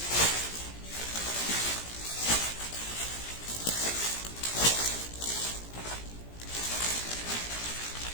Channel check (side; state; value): right; late; 17 ms